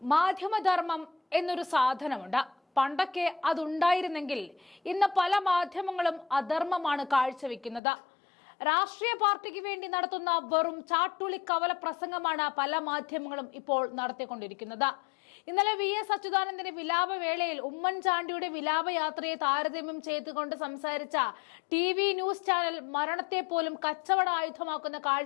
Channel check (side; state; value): right; drops out; at 7.8 s